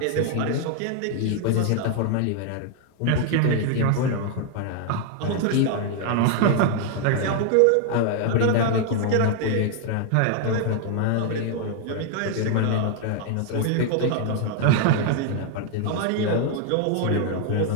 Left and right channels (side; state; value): both; different; correlation 0.00